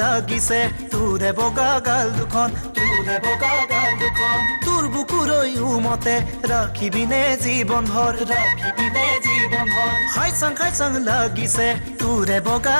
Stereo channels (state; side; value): inverted; both; correlation -1.00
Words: লাগিছে তোৰে বগা গাল দুখন তোৰ বুকুৰৈ উমতে ৰাখিবিনে জীৱন ভৰ খাই চাং লাগিছে তোৰে বগা